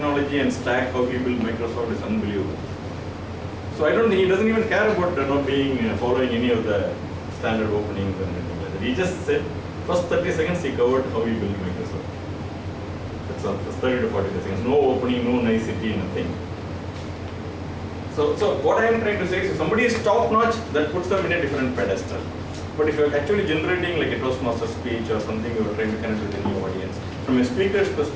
and stack, how he built Microsoft is unbelievable. So I don't think he doesn't even care about following any of the standard openings and anything like that. He just said, first 30 seconds he covered how he built Microsoft. That's all, first 30 to 40 seconds. No opening, no nicety, nothing. So what I am trying to say is if somebody is top notch, that puts them in a different pedestal. But if you are actually generating like a Toastmaster speech or something, you are trying to connect with a new audience, from a speaker's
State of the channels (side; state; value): both; identical; correlation 1.00